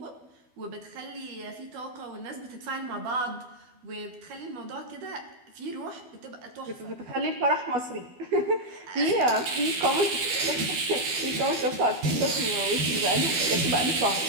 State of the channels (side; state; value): left; late; 12 ms